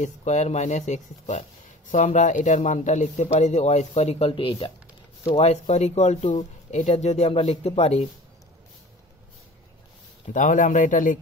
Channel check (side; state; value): both; normal; correlation 0.41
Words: a square minus x square. So আমরা এটার মানটা লিখতে পারি যে ওয়াই স্কোয়ার ইকুয়াল টু এইটা। So y square equal to এটা যদি আমরা লিখতে পারি তাহলে আমরা এটা